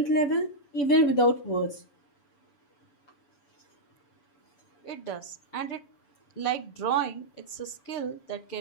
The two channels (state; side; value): late; right; 7.0 ms